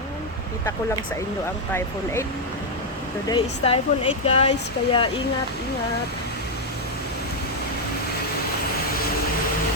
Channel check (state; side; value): normal; both; correlation 0.00